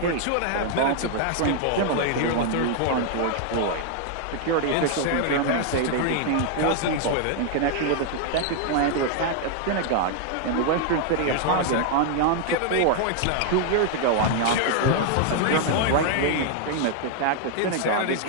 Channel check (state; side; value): different; both; correlation 0.00